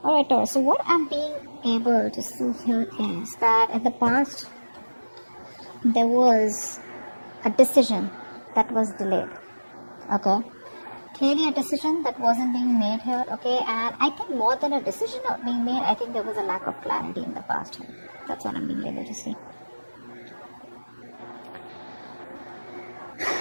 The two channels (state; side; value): inverted; both; correlation -1.00